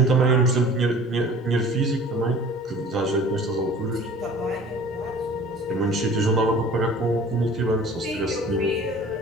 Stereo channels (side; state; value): both; normal; correlation 0.46